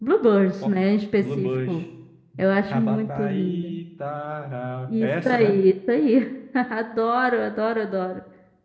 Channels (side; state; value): both; identical; correlation 1.00